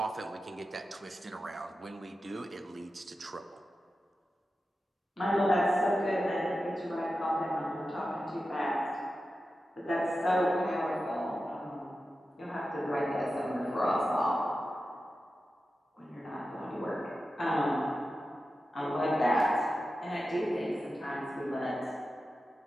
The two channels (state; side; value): normal; both; correlation 0.92